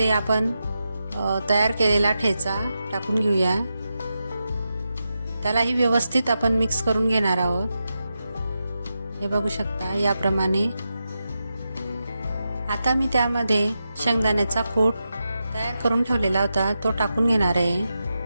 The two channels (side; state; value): both; inverted; correlation -0.89